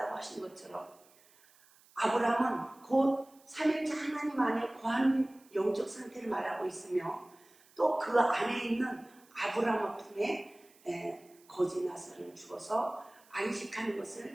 하신 것처럼 아브라함은 곧 삼일째 하나님 안에 거하는 영적 상태를 말하고 있으며 또 그 안에 있는 아브라함 품에 거지 나사로는 죽어서 안식하는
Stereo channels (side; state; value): right; noise; hiss, 28 dB below the sound